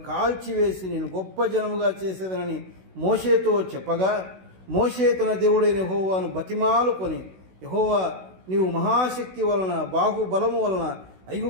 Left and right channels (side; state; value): left; late; 16 ms